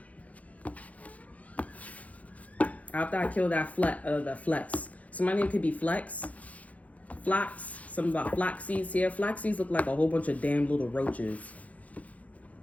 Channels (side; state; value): right; late; 0.069 ms